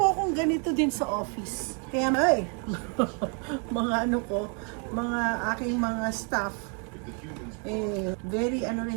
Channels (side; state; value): left; quieter; 38.9 dB